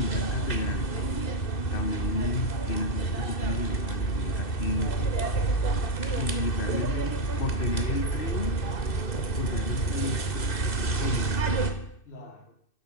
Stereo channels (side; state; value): right; late; 2.6 ms